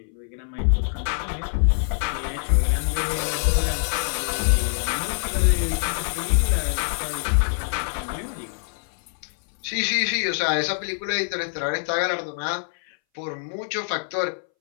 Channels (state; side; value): silent; right; 60 dB below the other